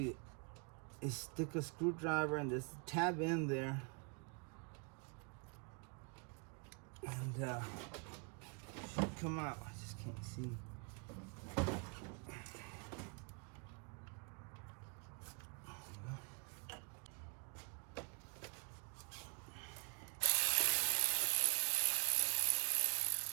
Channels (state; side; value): quieter; left; 35.4 dB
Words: is stick a screwdriver and this tab in there, and should come out. I just can't see.